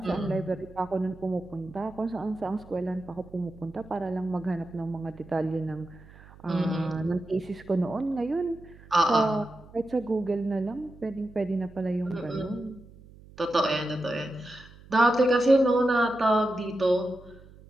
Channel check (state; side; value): noise; right; hum, 22 dB below the sound